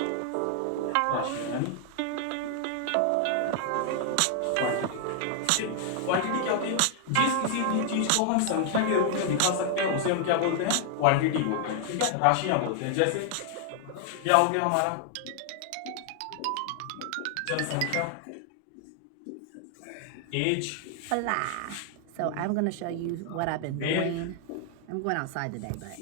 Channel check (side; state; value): both; different; correlation 0.00